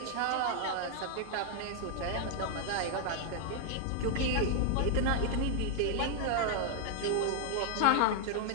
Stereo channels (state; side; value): different; both; correlation 0.00